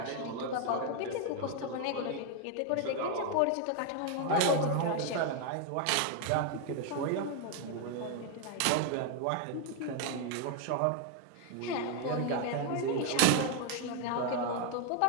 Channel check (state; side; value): different; both; correlation 0.00